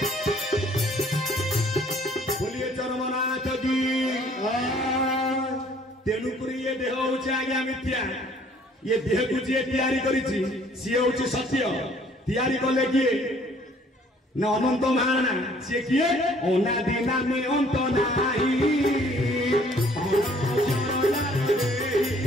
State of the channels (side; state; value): both; normal; correlation 0.59